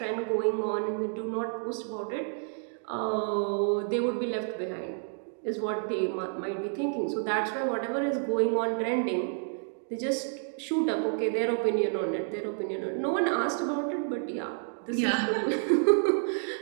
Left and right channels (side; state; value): left; silent; 58 dB below the other